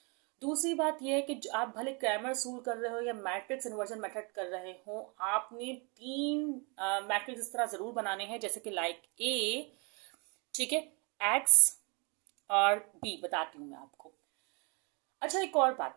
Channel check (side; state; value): left; quieter; 32.2 dB